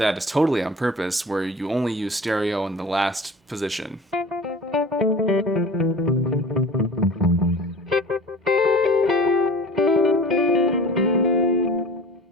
is totally on purpose, where you only use stereo in the last position.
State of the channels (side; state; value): both; normal; correlation 0.40